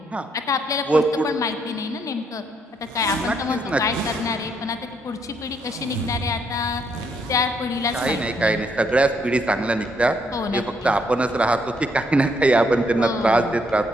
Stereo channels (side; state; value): both; normal; correlation 0.72